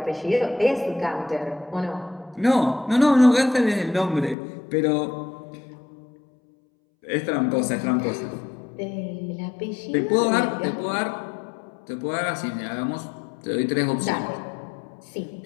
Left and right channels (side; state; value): right; drops out; at 4.4 s